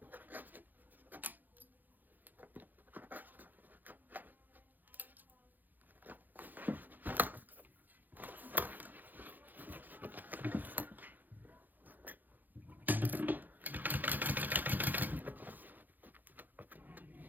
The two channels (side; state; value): left; late; 0.086 ms